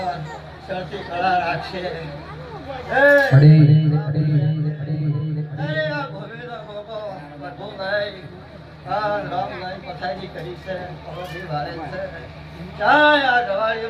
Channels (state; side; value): identical; both; correlation 1.00